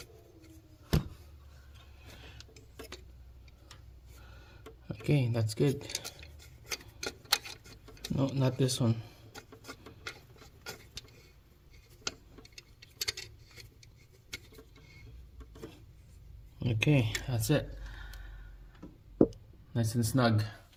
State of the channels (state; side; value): identical; both; correlation 1.00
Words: Okay, that's good. No, not this one. Okay, that's it. Nice and snug.